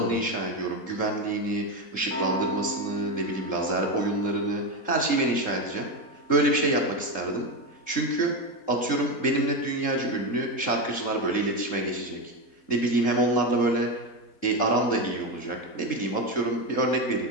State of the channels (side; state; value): right; late; 3.7 ms